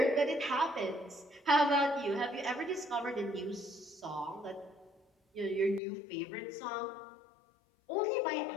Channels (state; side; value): drops out; right; at 5.8 s